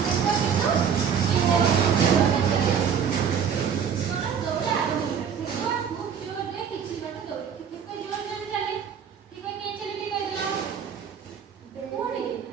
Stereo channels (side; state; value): left; quieter; 7.4 dB